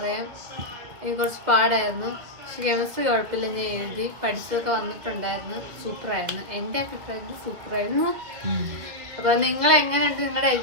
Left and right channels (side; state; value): left; late; 2.3 ms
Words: എനിക്ക് കുറച്ച് പാടായിരുന്നു. പക്ഷെ കെമിസ്ട്രി കുഴപ്പമില്ല, ഞാൻ എഴുതി, പഠിച്ചതൊക്കെ വന്നിട്ടുണ്ടായിരുന്നു. സൂപ്പറായിരുന്നു, എൻ്റെ അഭിപ്രായത്തിൽ സൂപ്പറായിരുന്നു. അപ്പോൾ നിങ്ങൾ എങ്ങനെയുണ്ട് നിങ്ങളുടെ